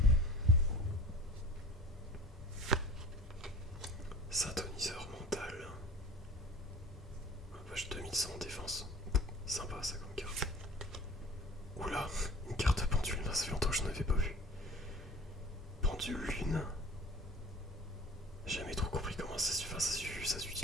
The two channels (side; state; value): both; normal; correlation 0.43